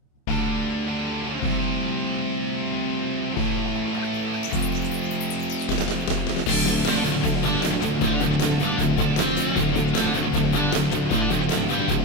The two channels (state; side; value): late; right; 27 ms